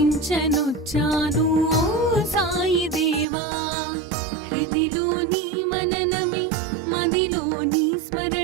ఓ సాయి దేవా. హృదిలోని మననమే మదిలోని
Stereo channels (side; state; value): left; drops out; at 3.2 s